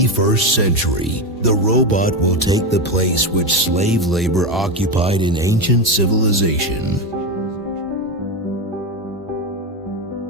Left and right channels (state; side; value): normal; both; correlation 0.15